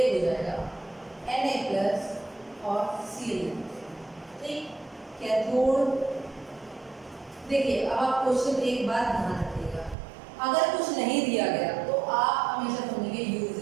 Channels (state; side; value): drops out; left; at 10.0 s